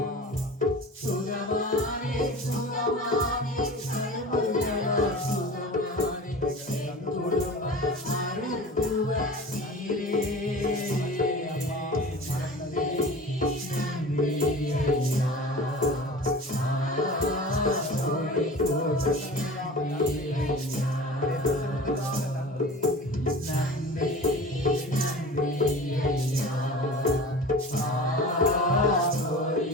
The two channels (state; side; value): normal; both; correlation 0.37